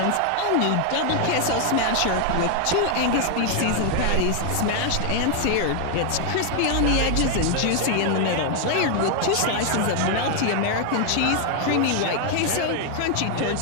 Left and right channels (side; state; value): both; different; correlation 0.00